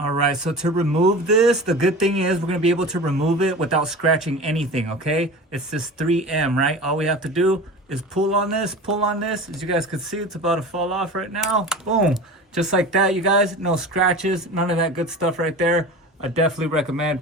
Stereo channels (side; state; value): both; normal; correlation 0.34